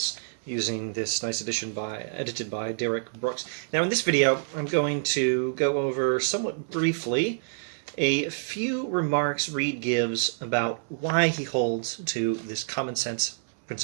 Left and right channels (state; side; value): silent; left; digital silence